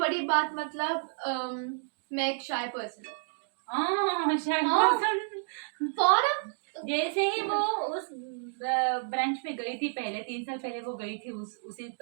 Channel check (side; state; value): left; silent; digital silence